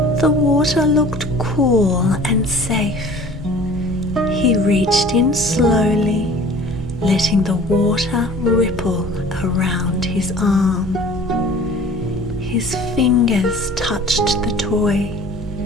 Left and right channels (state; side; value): normal; both; correlation 0.46